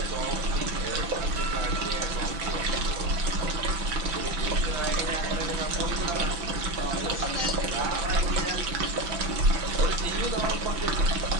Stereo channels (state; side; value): late; left; 5.9 ms